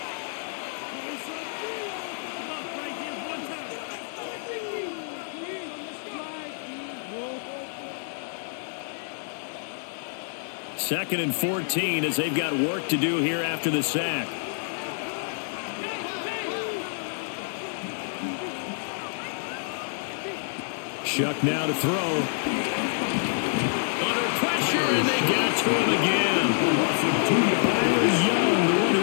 Second and 14 as they've got work to do here after the sack. Shuck now to throw. Under pressure, and they got to him again. Young, the one who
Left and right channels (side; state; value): right; silent; digital silence